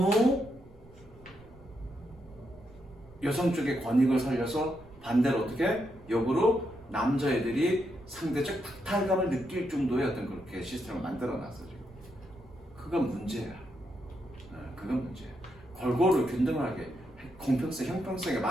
여성 쪽의 권익을 살려서 반대로 어떻게 역으로 남자애들이 상대적 박탈감을 느낄 정도의 어떤 그렇게 시스템을 만들어놨어 지금. 그건 문제야. 그건 문제야. 골고루 균등하게 공평성, 형평성에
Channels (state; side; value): noise; right; rumble, 23 dB below the sound